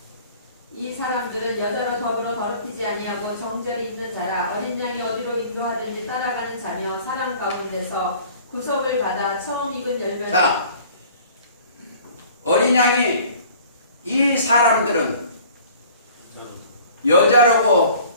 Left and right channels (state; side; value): inverted; both; correlation -0.50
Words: 이 사람들은 여자로 더불어 더럽히지 아니하고 정절이 있는 자라 어린 양이 어디로 인도하든지 따라가는 자며 사람 가운데서 구속을 받아 처음 익은 열매를. 자, 어린 양이 이 사람들은